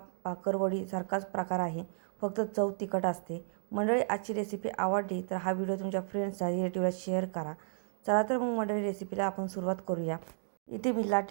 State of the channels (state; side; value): silent; left; digital silence